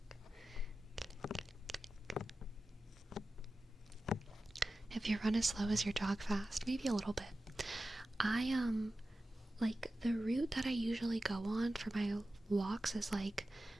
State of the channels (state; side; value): normal; both; correlation 0.94